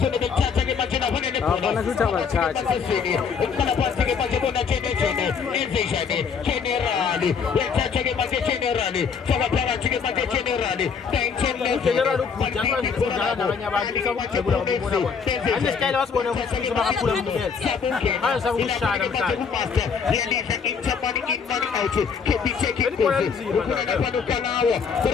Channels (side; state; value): right; quieter; 6.1 dB